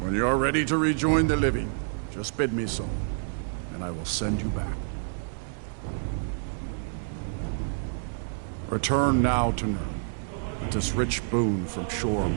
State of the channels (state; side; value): silent; left; digital silence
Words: you are ready to rejoin the living, just bid me so, and I will send you back. Return now to Nirn, with this rich boon from Shore,